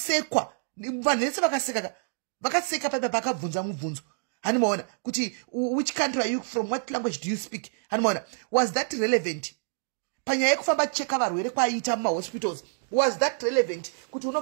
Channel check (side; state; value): left; silent; digital silence